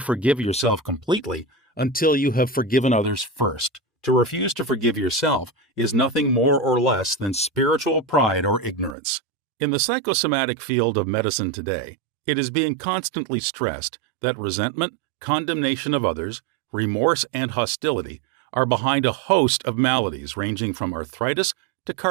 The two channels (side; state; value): left; drops out; at 9.0 s